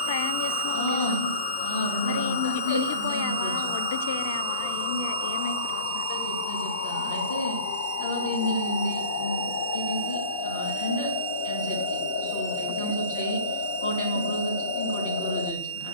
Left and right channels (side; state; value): both; inverted; correlation -0.39